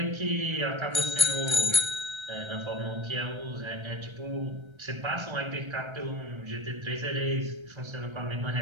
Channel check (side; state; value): left; late; 1.3 ms